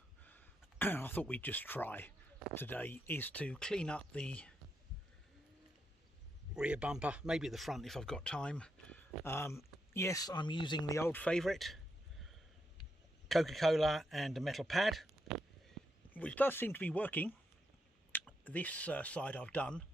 I thought we'd just try today is to clean up the rear bumper, maybe the front if I've got time. Yes, I'm using the old favourite, Coca-Cola and a metal pad, which does seem to be working. This side I've done,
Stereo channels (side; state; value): both; normal; correlation 0.82